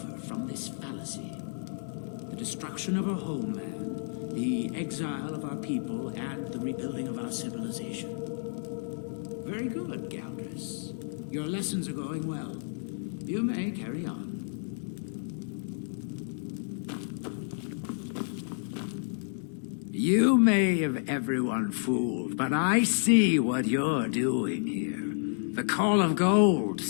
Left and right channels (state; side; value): silent; right; digital silence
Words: from this fallacy? The destruction of our homeland, the exile of our people, and the rebuilding of our civilization. Very good, Galdris. Your lessons are going well. You may carry on. You may have everyone fooled, but I see what you're doing here. The call of gold